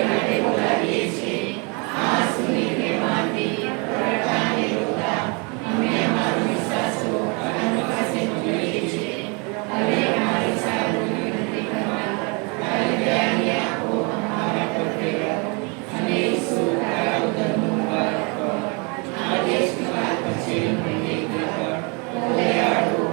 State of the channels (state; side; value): quieter; left; 31.6 dB